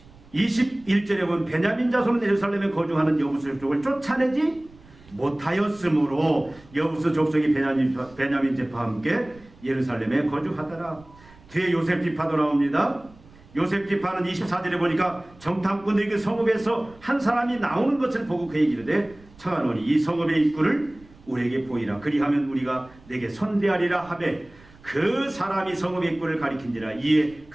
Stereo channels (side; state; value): right; noise; rumble, 25 dB below the sound